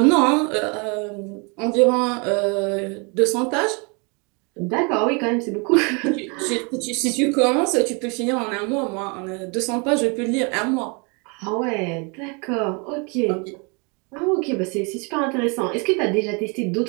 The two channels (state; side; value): quieter; left; 32.5 dB